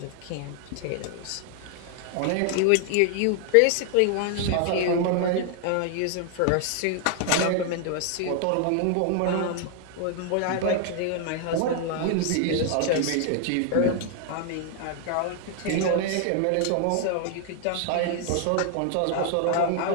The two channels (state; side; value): different; both; correlation 0.00